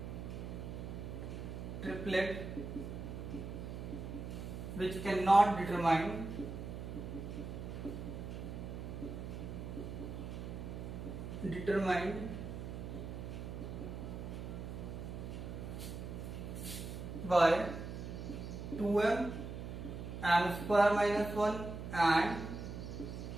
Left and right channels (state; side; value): noise; right; hum, 7 dB below the sound